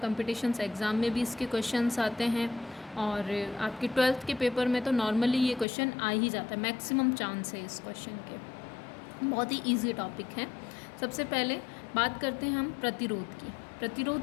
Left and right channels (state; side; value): drops out; right; at 5.7 s